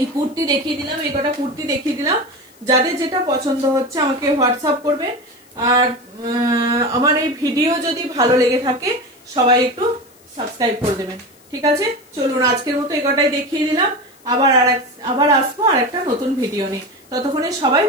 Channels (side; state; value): left; noise; hiss, 29 dB below the sound